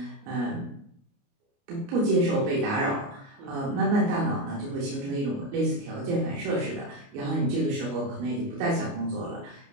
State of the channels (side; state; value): left; late; 29 ms